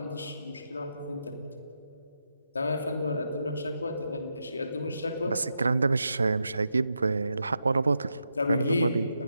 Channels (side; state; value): both; inverted; correlation -0.84